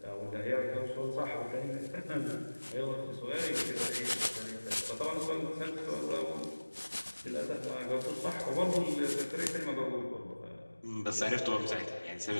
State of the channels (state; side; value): inverted; both; correlation -1.00